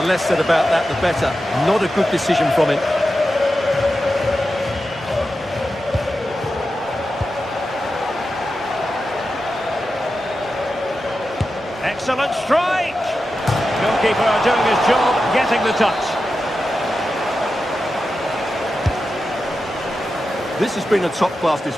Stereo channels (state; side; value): normal; both; correlation 0.91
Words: less said about that, the better. Not a good decision from him. Excellent strike! Goalkeeper doing his job, getting the touch. This has been a top-class